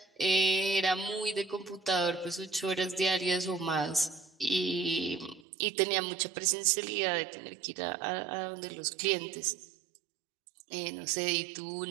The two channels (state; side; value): drops out; left; at 5.5 s